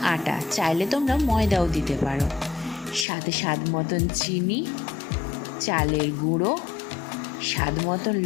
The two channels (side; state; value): right; drops out; at 3.1 s